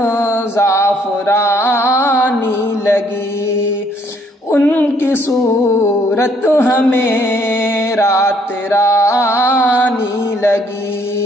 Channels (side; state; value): both; normal; correlation 0.66